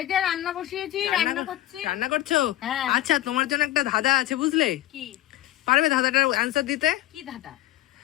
যে রান্না বসিয়েছি, রান্না করছি। রান্না করছো? হ্যাঁ। আচ্ছা, তোমার জন্য একটা ধাঁধা আছে, বুঝলে? কি? পারবে ধাঁধাটার অ্যান্সার দিতে? কি ধাঁধা?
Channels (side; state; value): right; quieter; 14.9 dB